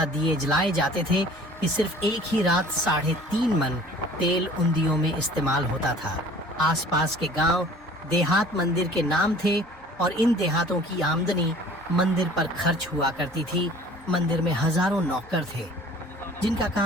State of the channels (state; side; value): normal; both; correlation 0.49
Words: दिए जलाए जाते थे कि सिर्फ एक ही रात 3.5 मन तेल उन दियों में इस्तेमाल होता था। आसपास के गांव देहात मंदिर के नाम थे और इन देहातों की आमदनी मंदिर पर खर्च हुआ करती थी। मंदिर में हजारों नौकर थे जिनका